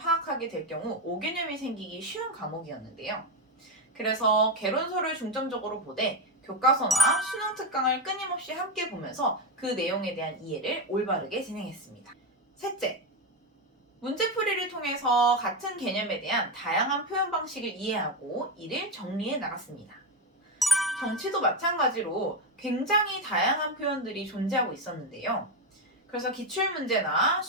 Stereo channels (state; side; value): normal; both; correlation 0.11